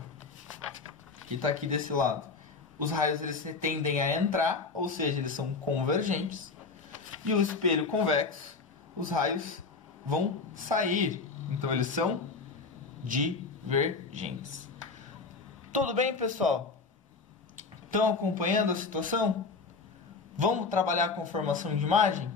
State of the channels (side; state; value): right; quieter; 4.4 dB